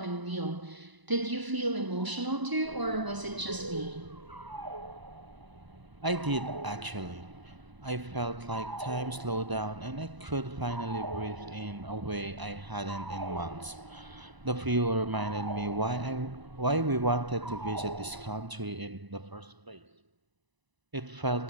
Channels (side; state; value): left; late; 1.0 ms